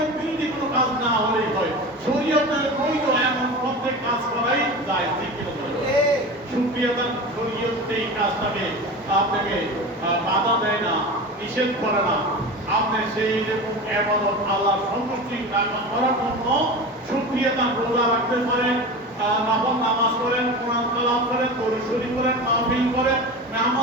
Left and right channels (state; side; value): normal; both; correlation 0.30